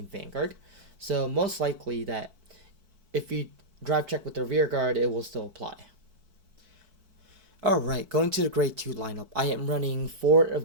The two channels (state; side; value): late; left; 4.5 ms